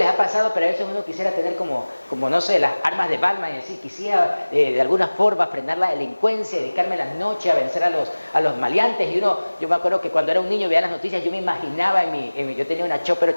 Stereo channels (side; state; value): both; inverted; correlation -1.00